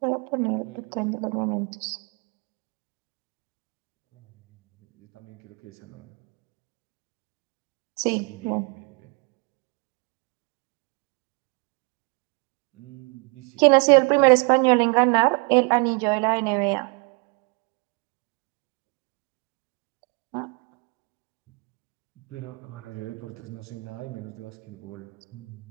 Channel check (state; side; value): quieter; left; 31.8 dB